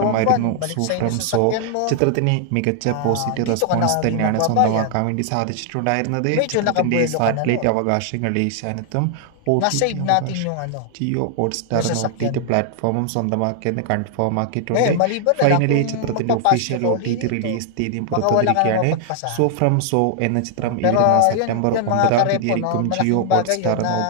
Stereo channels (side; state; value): both; different; correlation 0.00